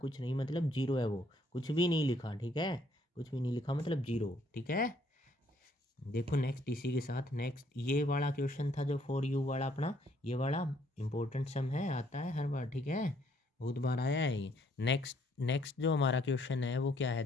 नहीं मतलब 0 है, वो कुछ भी नहीं लिखा, ठीक है। कुछ भी नहीं लिखा मतलब 0, ठीक है। देखो नेक्स्ट इसी के साथ, नेक्स्ट ये वाला क्वेश्चन था जो 4u वाला अपना, ये वाला इंपॉर्टेंट सम है, आता है हर बार, ठीक है, बहुत बार आया है ये। नेक्स्ट नेक्स्ट जो हमारा क्वेश्चन है वो क्या है,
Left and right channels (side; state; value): both; normal; correlation 0.67